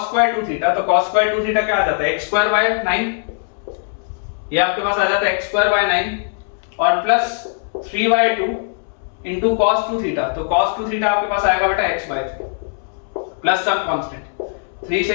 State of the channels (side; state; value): right; silent; 65 dB below the other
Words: 2 theta, तो cos स्क्वायर 2 थीटा क्या आ जाता है x²/9, ये आपके पास आ जाता है x²/9, और प्लस 3/2 इंटू cos 2 थीटा, तो cos 2 थीटा आपके पास आएगा बेटा x/3 प्लस सम कांस्टेंट, 3 से